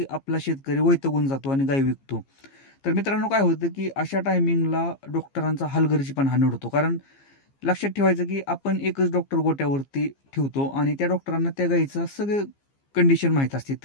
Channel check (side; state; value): right; late; 15 ms